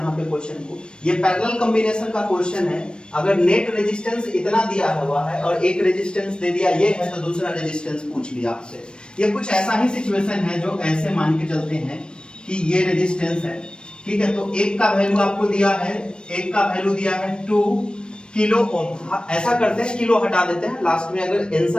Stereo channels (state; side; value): late; right; 0.053 ms